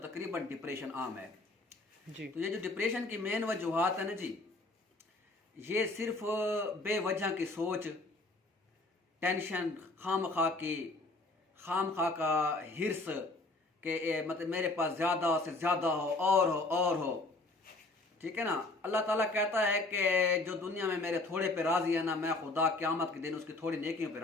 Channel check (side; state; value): right; quieter; 3.1 dB